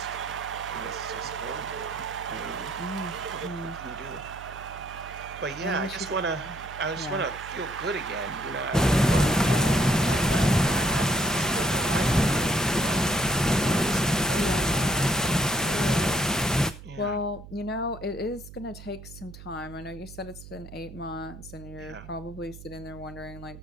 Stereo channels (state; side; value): noise; right; hum, 15 dB below the sound